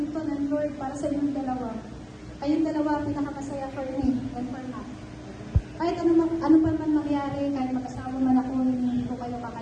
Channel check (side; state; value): both; identical; correlation 1.00